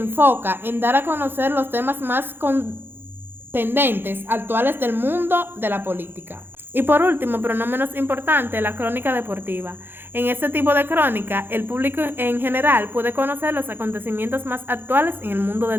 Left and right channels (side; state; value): left; late; 0.10 ms